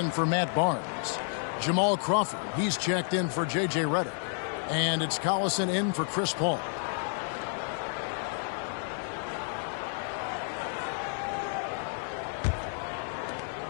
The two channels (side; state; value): right; silent; 57 dB below the other